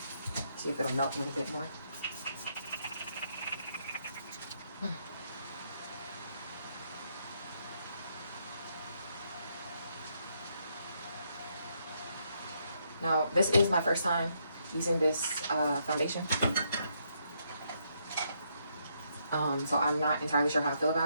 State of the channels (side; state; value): both; inverted; correlation -0.75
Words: See if it'll melt a little bit more. Now, this is my first time using this foundation. So I'm not entirely sure how I feel